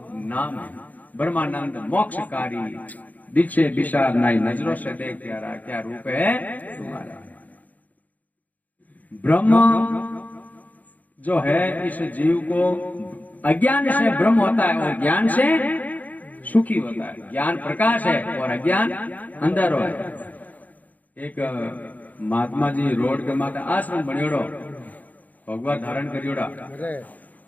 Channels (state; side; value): late; right; 0.078 ms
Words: नाम है। ब्रह्मानंद मोक्षकारी, दीक्षे विशाल नाई, नजरों से देख प्यारा क्या रूप है तुम्हारा। ब्रह्म जो है इस जीव को अज्ञान से ब्रह्म होता है और ज्ञान से सुखी होता है। ज्ञान प्रकाश है और अज्ञान अंधेरो है। एक महात्मा जी रोड के माथे आश्रम बनियोड़ो, भगवा धारण करियोड़ा,